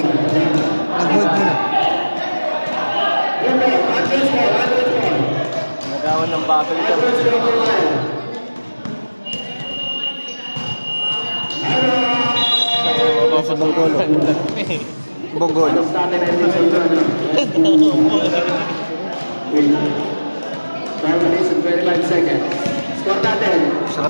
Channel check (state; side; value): inverted; both; correlation -1.00